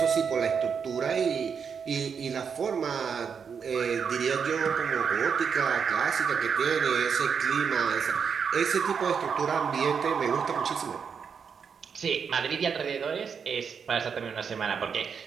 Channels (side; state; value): left; quieter; 6.5 dB